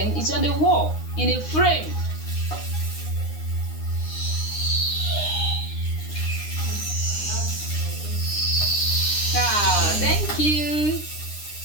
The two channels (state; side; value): late; right; 9.8 ms